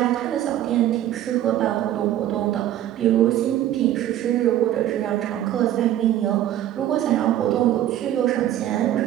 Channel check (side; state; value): left; quieter; 12.4 dB